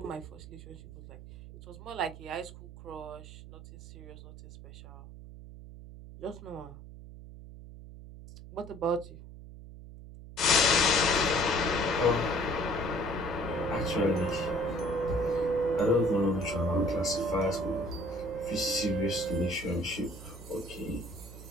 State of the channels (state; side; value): noise; right; hum, 15 dB below the sound